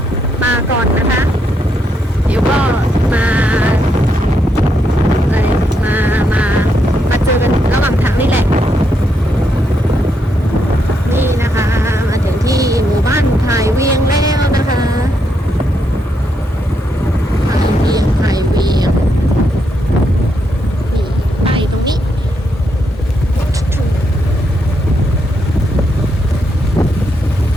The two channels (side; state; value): both; normal; correlation 0.79